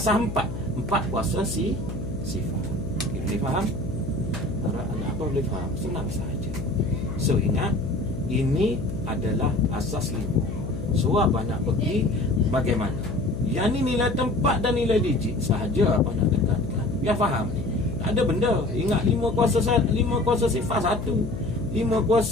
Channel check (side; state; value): left; noise; hum, 7 dB below the sound